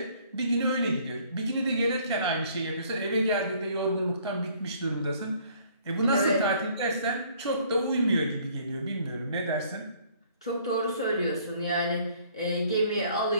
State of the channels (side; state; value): both; inverted; correlation -0.60